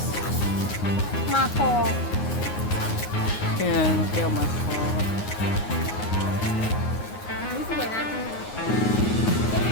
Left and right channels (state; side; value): late; right; 9.6 ms